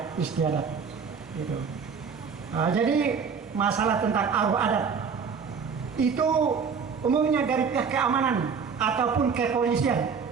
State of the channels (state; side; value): quieter; left; 6.0 dB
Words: istiadat gitu. Jadi masalah tentang aruh adat itu umumnya dari pihak keamanan ataupun kepolisian